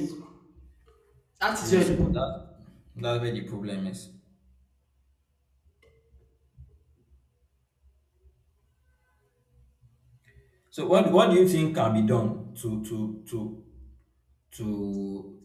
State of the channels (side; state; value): both; identical; correlation 1.00